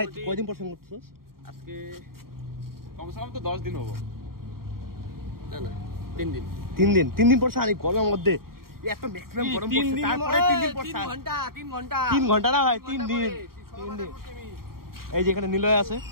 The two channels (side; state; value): left; late; 0.93 ms